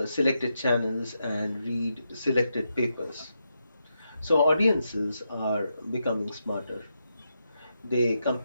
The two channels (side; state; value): both; inverted; correlation -0.84